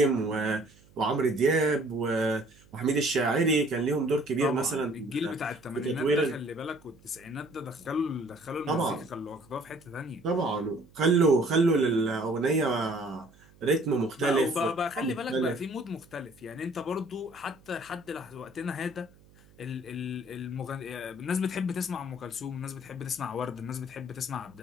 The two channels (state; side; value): noise; right; hum, 27 dB below the sound